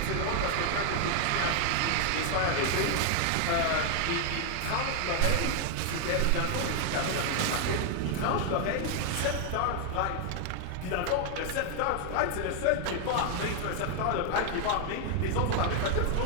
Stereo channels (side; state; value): both; different; correlation 0.00